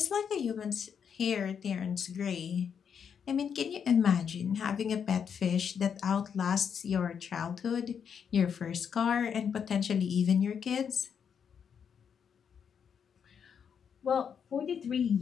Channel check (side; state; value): right; quieter; 7.3 dB